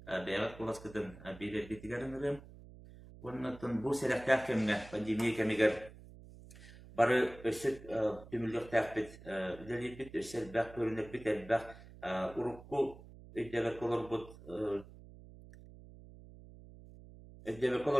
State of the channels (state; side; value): noise; right; hum, 18 dB below the sound